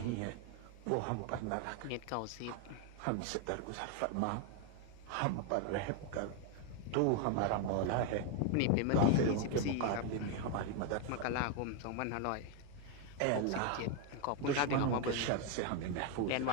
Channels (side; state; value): both; different; correlation 0.01